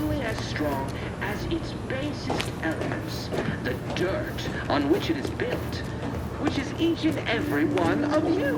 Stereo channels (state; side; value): identical; both; correlation 1.00